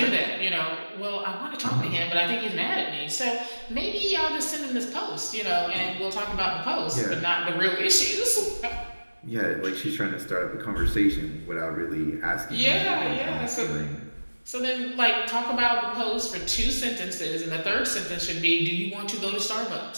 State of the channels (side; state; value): both; inverted; correlation -1.00